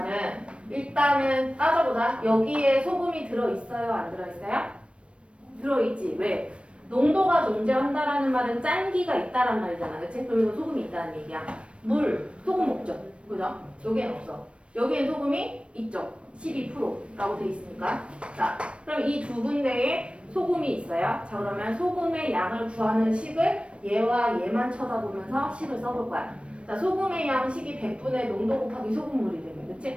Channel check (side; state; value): left; late; 0.059 ms